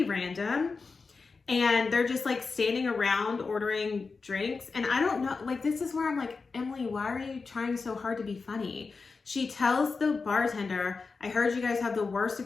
random. And they're just like standing around ordering drinks. And I don't know, like, this is where I'm like, Emily, why are you trying so hard to be funny? She tells the bartender, I heard you guys have the worst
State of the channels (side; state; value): right; quieter; 4.5 dB